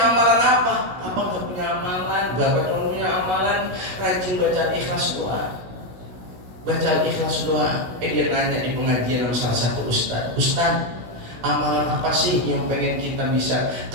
amalan apa? Bapak gak punya amalan. Bapak cuma punya amalan rajin baca ikhlas doa. Baca ikhlas doa. Dia nanya di pengajian sama salah satu ustaz, "Ustaz, amalan apa sih yang pengen kita bisa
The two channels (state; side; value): late; left; 16 ms